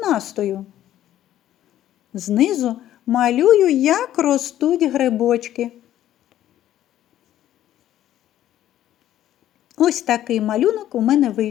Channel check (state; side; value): quieter; right; 12.4 dB